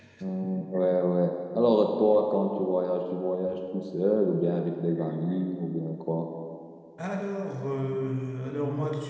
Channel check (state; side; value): identical; both; correlation 1.00